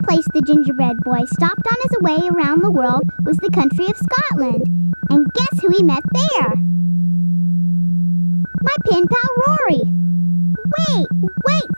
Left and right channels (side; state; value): both; inverted; correlation -1.00